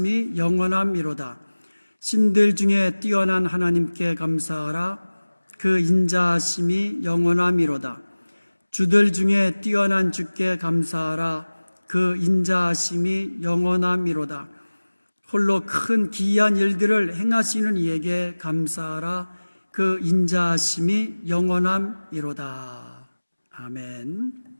영원함이로다. 신들 중에 뛰어난 하나님께 감사하라. 그 인자하심이 영원함이로다. 주들 중에 뛰어난 주께 감사하라. 그 인자하심이 영원함이로다. 홀로 큰 기이한 일들을 행하시는 이에게 감사하라. 그 인자하심이 영원함이로다. 아멘.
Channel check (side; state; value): both; inverted; correlation -1.00